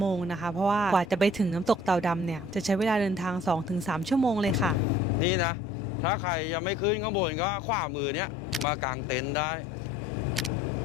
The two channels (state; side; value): normal; both; correlation 0.54